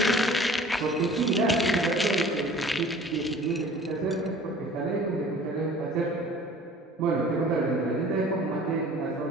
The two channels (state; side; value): normal; both; correlation 0.47